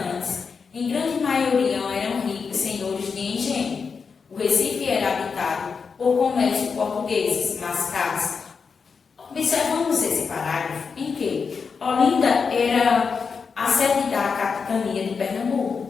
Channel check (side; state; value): right; quieter; 5.5 dB